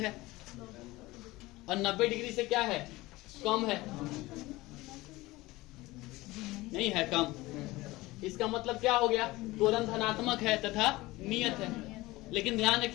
और 90 डिग्री से क्या है, कम है, नहीं है कम, इसका मतलब क्या हो गया, त्वरण धनात्मक है तथा नियत है। लेकिन ध्यान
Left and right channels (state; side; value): quieter; right; 19.8 dB